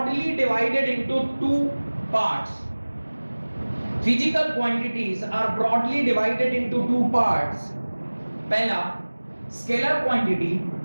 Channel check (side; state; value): both; inverted; correlation -1.00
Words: divided into two parts. Physical quantities are broadly divided into two parts. पहला स्केलर क्वांटिटी,